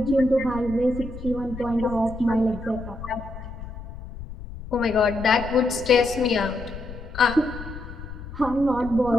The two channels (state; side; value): noise; left; rumble, 12 dB below the sound